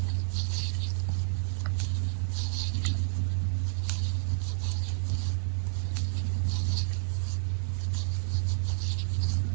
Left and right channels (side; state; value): left; silent; digital silence